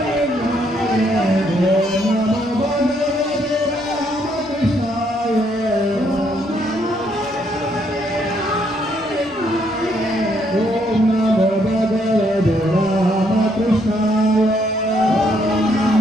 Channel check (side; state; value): both; normal; correlation 0.71